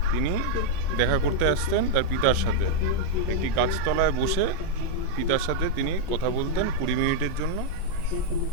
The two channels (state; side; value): different; both; correlation -0.01